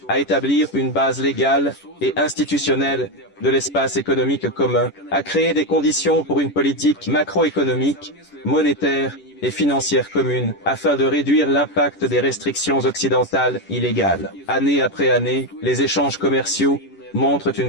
à établir une base légale et institutionnelle de l'espace économique commun, à créer des conditions pour une politique macroéconomique, monétaire et financière commune afin de réduire l'impact des restrictions occidentales illégales. Année après année, les échanges commerciaux montrent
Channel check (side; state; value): right; late; 11 ms